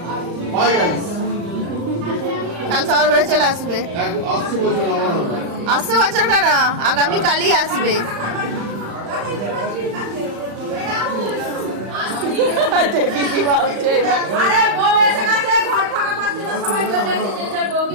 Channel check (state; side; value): late; left; 35 ms